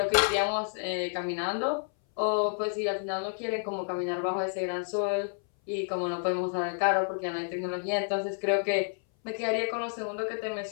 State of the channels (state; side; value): silent; right; 58 dB below the other